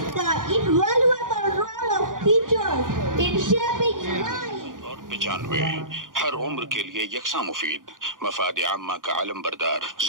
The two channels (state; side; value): late; left; 0.89 ms